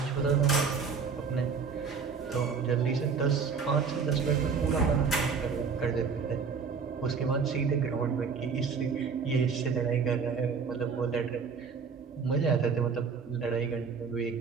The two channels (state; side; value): quieter; left; 5.7 dB